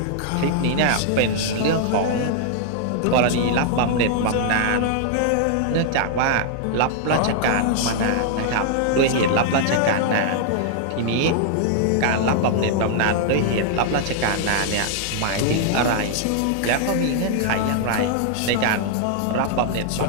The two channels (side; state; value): both; different; correlation 0.00